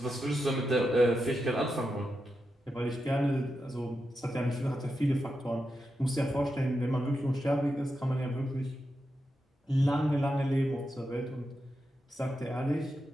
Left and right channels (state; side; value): normal; both; correlation 0.88